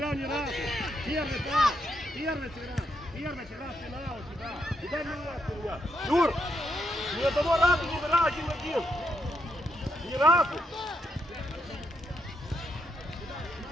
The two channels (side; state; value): both; normal; correlation 0.78